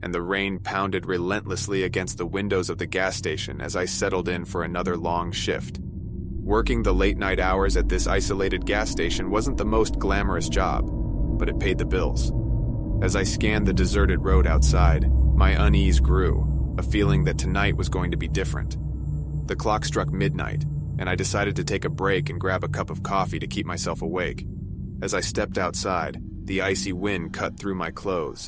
and the rain pounded relentlessly against the windows of the gas station as I settled in for another long shift. Working the late-night hours at this isolated gas station wasn't the most glamorous job, but it paid the bills. As I scanned the deserted road outside, my unease grew, a feeling that tonight was going to be different. The clock struck midnight, and I decided to take a break and grab a cup of coffee to keep myself awake. As I stepped outside, the icy wind cut through my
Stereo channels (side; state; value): both; identical; correlation 1.00